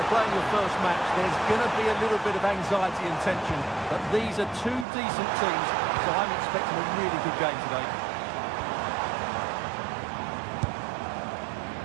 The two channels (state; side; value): drops out; left; at 4.9 s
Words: playing your first match, there's going to be a little bit of anxiety and tension. But these are two decent teams, so I'm expecting a really good game today.